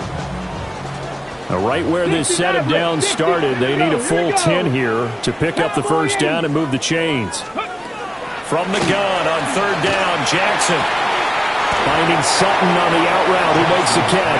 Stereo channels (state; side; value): identical; both; correlation 1.00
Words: Right where this set of downs started, they need a full 10 here to pick up the first down and move the chains. From the gun on third down, Jackson finding Sutton on the out route, who makes the